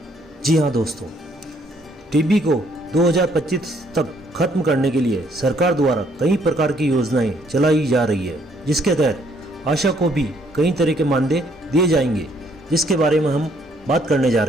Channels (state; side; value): normal; both; correlation 0.67